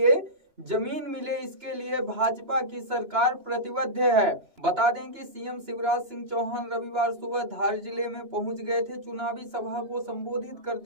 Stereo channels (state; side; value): late; left; 2.9 ms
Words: जमीन मिले। इसके लिए भाजपा की सरकार प्रतिबद्ध है। बता दें कि सीएम शिवराज सिंह चौहान रविवार सुबह धार जिले में पहुंच गए थे। चुनावी सभा को संबोधित